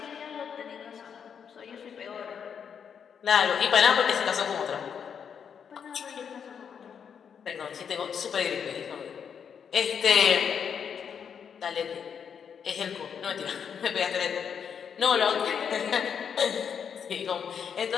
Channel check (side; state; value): right; quieter; 7.3 dB